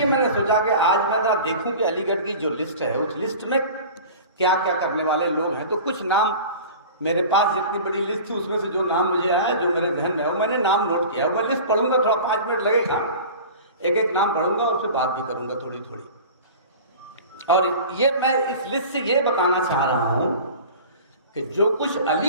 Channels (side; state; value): both; inverted; correlation -0.38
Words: मैंने सोचा कि आज मैं ना देखूं कि अलीगढ़ की जो लिस्ट है उस लिस्ट में क्या क्या करने वाले लोग हैं। तो कुछ नाम मेरे पास, जितनी बड़ी लिस्ट थी उसमें से जो नाम मुझे आया, जो मेरे ध्यान में है, वो मैंने नाम नोट किया। मैं लिस्ट पढ़ूंगा, थोड़ा 5 मिनट लगेगा, एक एक नाम पढ़ूंगा और फिर बात भी करूंगा थोड़ी थोड़ी। और ये मैं इस लिस्ट से ये बताना चाह रहा हूं कि जो कुछ